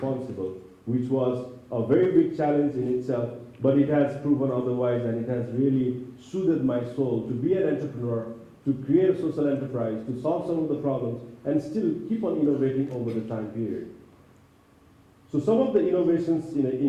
which was a very big challenge in itself, but it has proven otherwise, and it has really soothed my soul to be an entrepreneur, to create a social enterprise, to solve some of the problems, and still keep on innovating over the time period. So some of the innovations in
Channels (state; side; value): identical; both; correlation 1.00